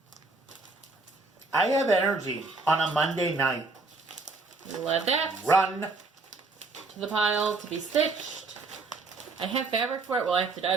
I have energy on a Monday night. Let that Run. to the pile to be stitched. I have fabric for it. Well, I have to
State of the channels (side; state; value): left; quieter; 3.7 dB